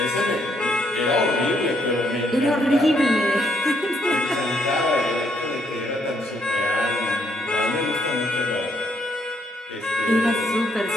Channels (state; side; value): normal; both; correlation 0.71